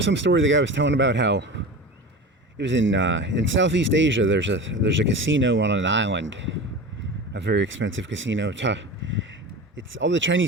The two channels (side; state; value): both; normal; correlation 0.31